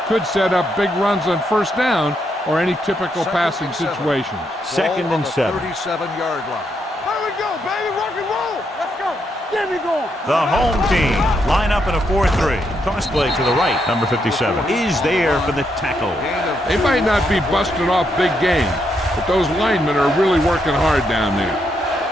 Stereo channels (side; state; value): both; normal; correlation 0.79